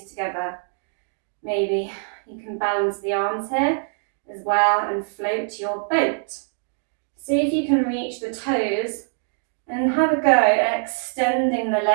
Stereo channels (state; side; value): silent; left; digital silence